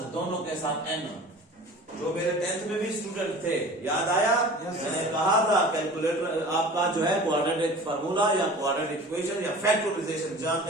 दोनों के साथ n। जो मेरे 10th में भी स्टूडेंट थे, याद आया, मैंने कहा था कैलकुलेटर आपका जो है क्वाड्रेटिक फार्मूला या क्वाड्रेटिक इक्वेशन या फैक्टराइजेशन जान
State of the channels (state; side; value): normal; both; correlation 0.41